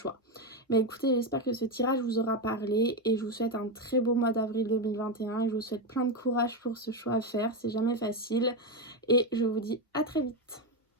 Mais écoutez, j'espère que ce tirage vous aura parlé et je vous souhaite un très beau mois d'avril 2021 et je vous souhaite plein de courage pour ce choix à faire, c'est jamais facile et je vous dis à très vite.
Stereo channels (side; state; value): both; normal; correlation 0.10